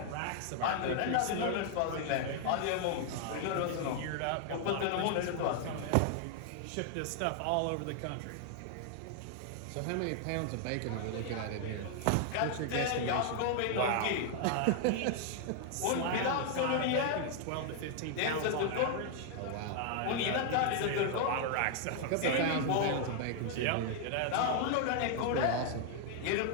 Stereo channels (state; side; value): different; both; correlation 0.00